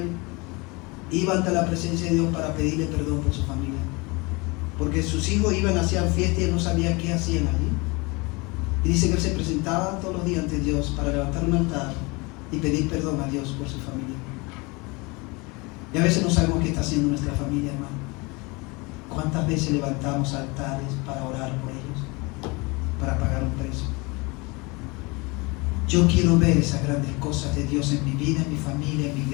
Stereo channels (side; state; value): right; quieter; 26.6 dB